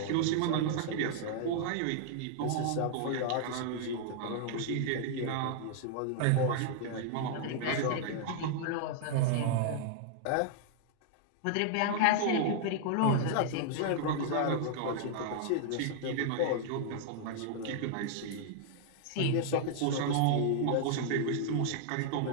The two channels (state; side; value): different; both; correlation -0.01